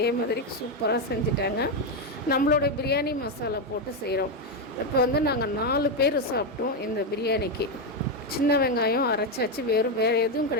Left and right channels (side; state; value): both; normal; correlation 0.07